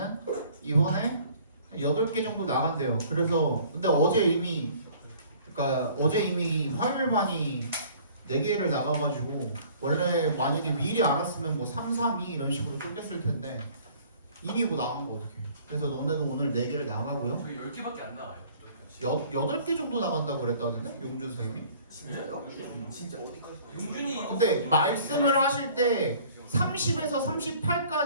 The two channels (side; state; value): both; inverted; correlation -0.53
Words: 이번에 8개 정도 나간대요. 그래서 근데 어제 이미 화요일반이 4개를 나가가지고 원래 만약에 미리 알았으면 뭐 3, 3, 2 이런 식으로 쪼갰을 텐데 이미 뭐 나간 거 어떡해. 그래서 너네도 오늘 4개를 나가고요. 저희 10개밖에 안 나와요. 8개 정도 나간다고 그랬다던데? 용준 선생님이? 진짜요? 진짜 어디까지? 용준이 이거 근데 말씀을 하실 때 30에서